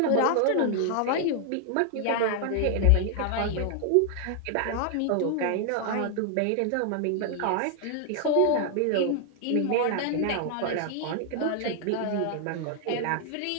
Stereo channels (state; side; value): different; both; correlation 0.00